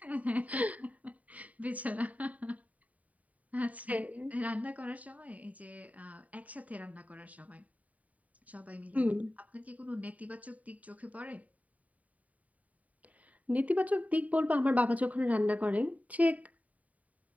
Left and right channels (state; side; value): late; left; 0.070 ms